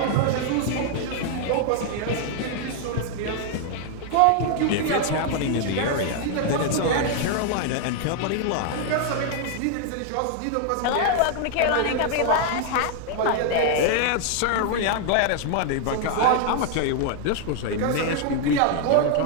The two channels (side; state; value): both; different; correlation 0.00